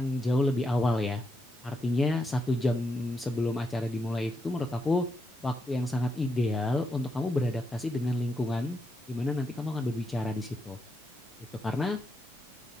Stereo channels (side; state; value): both; normal; correlation 0.83